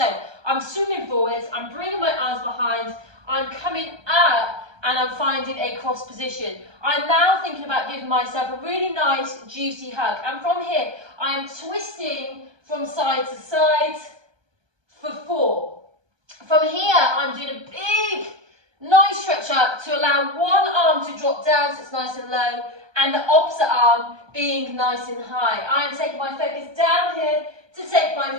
I'm swimming forwards, I'm bringing my arms behind, I'm coming up and I'm finding a cross position. I'm now thinking about giving myself a really nice juicy hug, and from here I am twisting from side to side for 4. From here I'm doing a big nice stretch up to allow one arm to drop down so it's nice and low, and the opposite arm being nice and high. I am taking my focus down here to take my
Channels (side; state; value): left; late; 1.2 ms